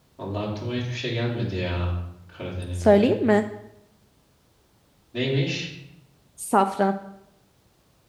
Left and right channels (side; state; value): both; identical; correlation 1.00